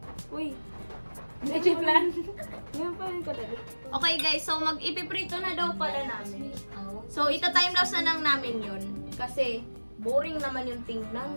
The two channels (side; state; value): both; inverted; correlation -1.00